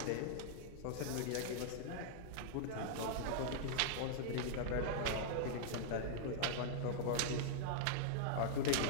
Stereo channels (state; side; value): different; both; correlation -0.01